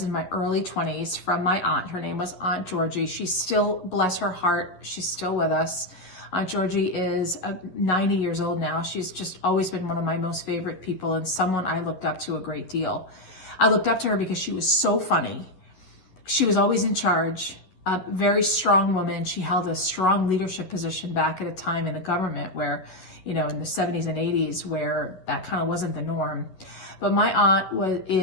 in my early 20s from my aunt. Her name was Aunt Georgie. She's still, bless her heart, she's still with us. Aunt Georgie is 90 years old now. She's just always been one of my most favorite people and someone I looked up to a great deal. I looked up to her because she was so funny. She was always in charge, a very strong woman. She held a strong leadership position back at a time in the government where, in the 70s and 80s, where that kind of wasn't the norm. But my aunt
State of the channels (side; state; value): right; late; 11 ms